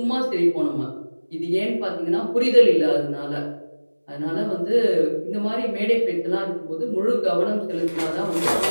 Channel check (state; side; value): inverted; both; correlation -1.00